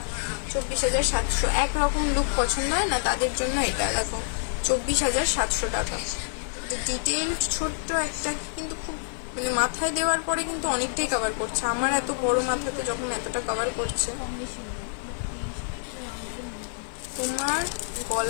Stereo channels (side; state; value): right; silent; digital silence